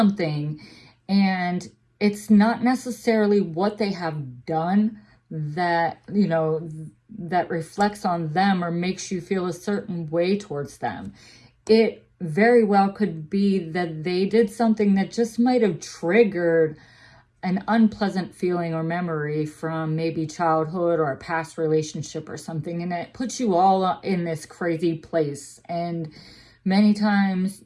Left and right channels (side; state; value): both; identical; correlation 1.00